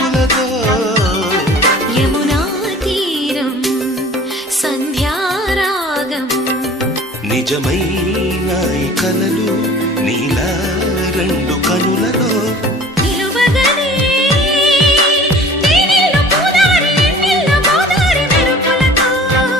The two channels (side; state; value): both; normal; correlation 0.45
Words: యమునా తీరం సంధ్యారాగం నిజమైన ఈ కలలు నీలా రెండు కనులలో నిలువగనే తేనెల్లో గోదారి ఎన్నెల్లో గోదారి మెరుపులతో